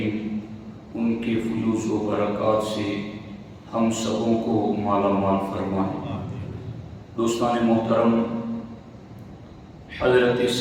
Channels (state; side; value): identical; both; correlation 1.00